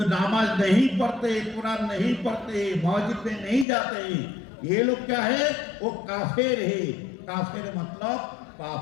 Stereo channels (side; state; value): right; drops out; at 3.7 s